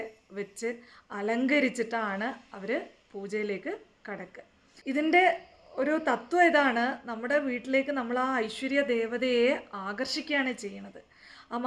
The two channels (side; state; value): both; identical; correlation 1.00